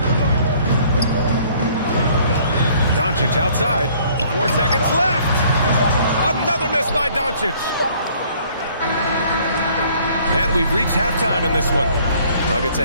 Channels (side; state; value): both; inverted; correlation -0.58